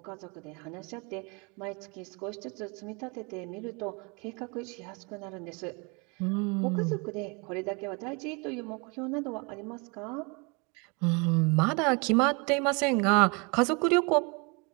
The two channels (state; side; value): quieter; left; 31.2 dB